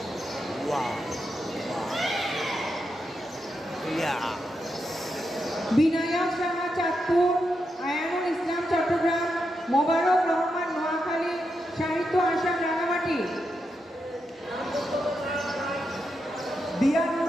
বিনায়ক শাহ চাঁদপুর, আয়ানুল ইসলাম চট্টগ্রাম, মোবারক রহমান নোয়াখালী, সাহিত্য আসাম রাঙামাটি।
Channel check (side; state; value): both; normal; correlation 0.85